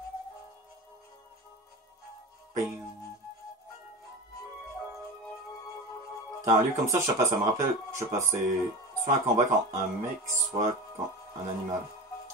T'as un lieu comme ça, je sais pas, ça me rappelle, je sais pas, c'est soit un combat quand un mec, soit quand un animal.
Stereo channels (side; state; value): both; normal; correlation 0.29